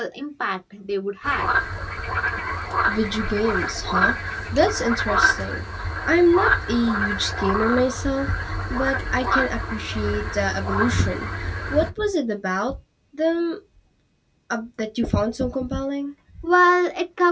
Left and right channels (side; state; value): both; identical; correlation 1.00